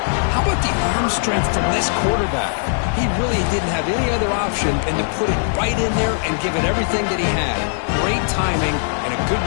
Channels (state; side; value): silent; right; digital silence